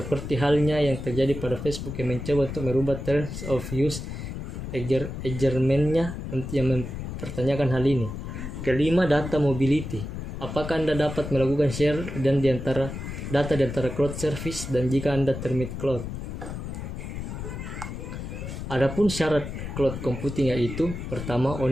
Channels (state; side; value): noise; left; rumble, 7 dB below the sound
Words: halnya yang terjadi pada Facebook yang mencoba untuk merubah terms of use agreement-nya yang mempertanyakan hal ini. Kelima, data mobility. Apakah Anda dapat melakukan share dan data di antara cloud service dan jika Anda termit cloud? Adapun syarat cloud computing yaitu pertama,